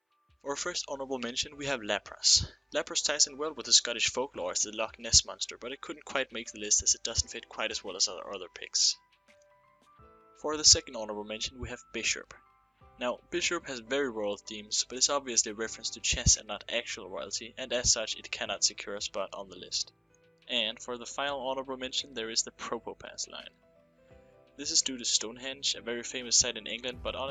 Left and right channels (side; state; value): both; identical; correlation 1.00